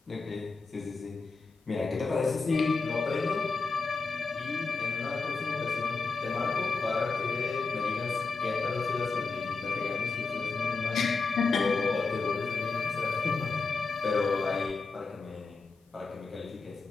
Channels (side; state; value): right; quieter; 4.3 dB